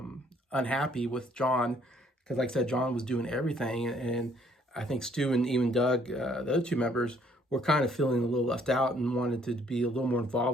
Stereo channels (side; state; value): both; normal; correlation 0.64